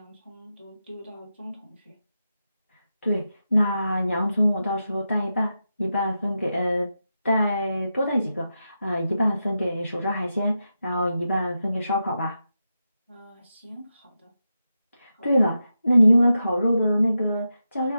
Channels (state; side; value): inverted; both; correlation -0.89